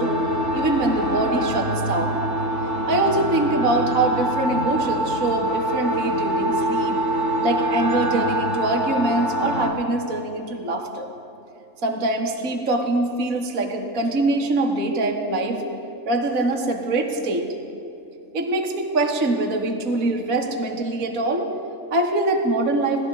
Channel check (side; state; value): left; late; 3.4 ms